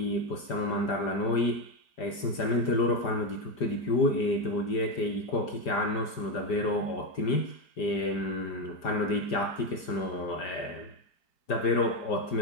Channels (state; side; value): late; right; 5.1 ms